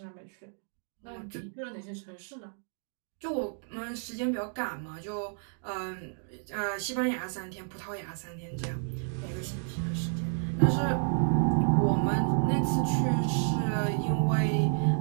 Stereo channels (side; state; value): left; silent; 57 dB below the other